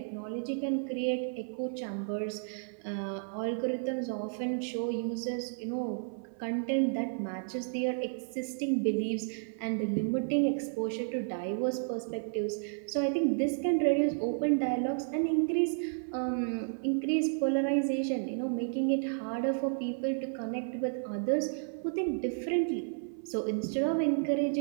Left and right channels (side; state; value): left; silent; 56 dB below the other